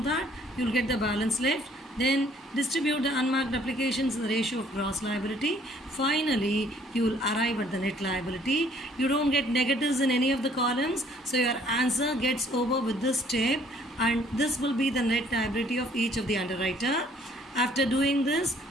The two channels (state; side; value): normal; both; correlation 0.60